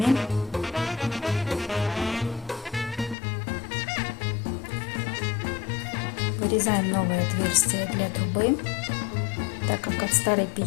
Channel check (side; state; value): right; drops out; at 3.2 s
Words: Вырезаем новое отверстие для трубы, так как от старой